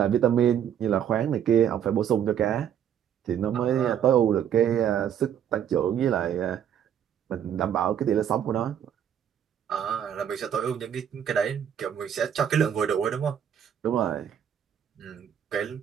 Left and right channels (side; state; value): left; quieter; 9.2 dB